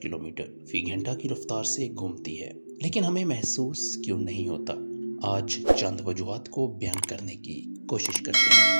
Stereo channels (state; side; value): inverted; both; correlation -1.00